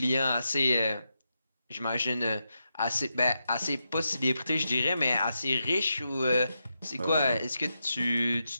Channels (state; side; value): inverted; both; correlation -0.86